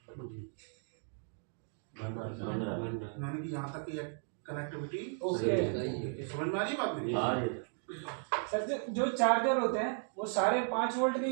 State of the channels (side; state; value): left; silent; 54 dB below the other